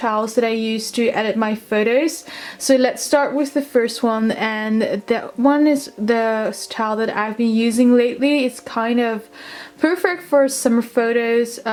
that I use to edit my photos. So let's start with the first one, and that one is the style that I've been using lately. It's kind of perfect for summer photos,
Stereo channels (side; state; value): both; identical; correlation 1.00